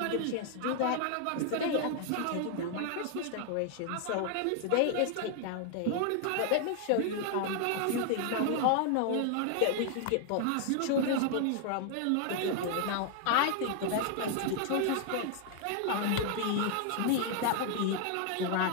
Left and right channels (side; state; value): both; different; correlation 0.00